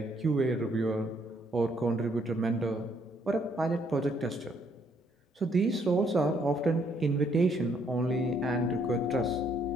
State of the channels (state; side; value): normal; both; correlation 0.69